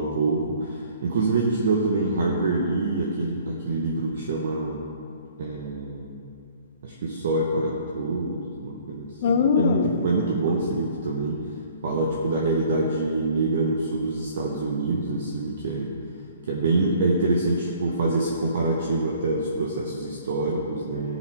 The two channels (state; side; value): inverted; both; correlation -0.55